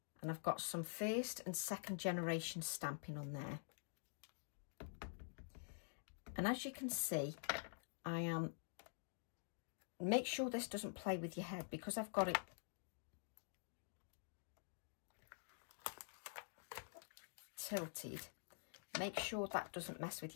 And I've got some first and second generation stamping on there. And as you can see, I am, make sure this doesn't play with your head, because I've got it tilted. Make sure that doesn't mess with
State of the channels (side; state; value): right; silent; digital silence